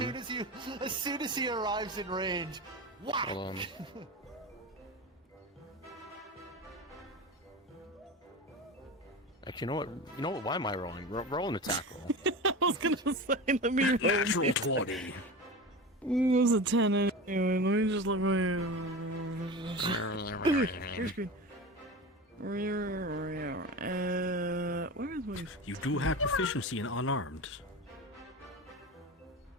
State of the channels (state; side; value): normal; both; correlation 0.28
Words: As soon as he arrives in range, whack! Hold on. Actually, you know what? Why am I rolling? Roll an attack roll. I was gonna say, let me roll. Natural 20. It was a 10 anyway. Let me just look. Your screen. Where is my? You do have proficiency in unarmed.